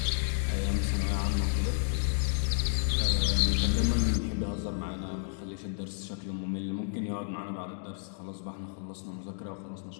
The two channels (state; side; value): silent; right; digital silence